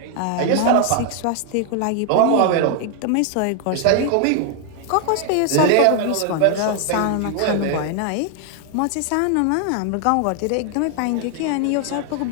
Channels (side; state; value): both; different; correlation 0.00